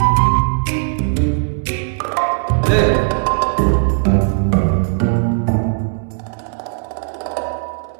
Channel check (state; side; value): silent; left; 65 dB below the other